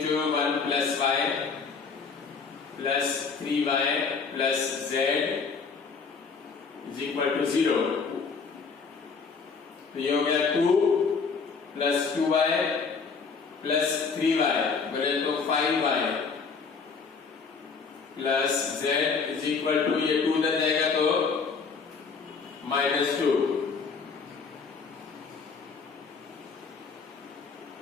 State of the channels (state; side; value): quieter; right; 5.2 dB